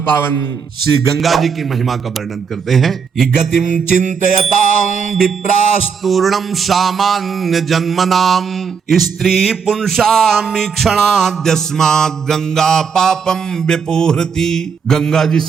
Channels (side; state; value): left; quieter; 6.2 dB